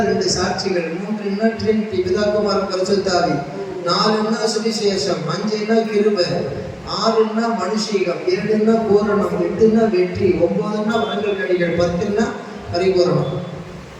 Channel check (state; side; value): identical; both; correlation 1.00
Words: 2 சாட்சிகள், 3ன்னா ட்ரினிட்டி பிதாகுமாரன் பரிசுத்தாவி, 4ன்னா சுவிசேஷம், 5ன்னா கிருபை, 6ன்னா மனுஷீகம், 7ன்னா பூரணம், 8ன்னா வெற்றி, 9ன்னா வரங்கள் கனிகள், 10ன்னா பரிபூரணம்,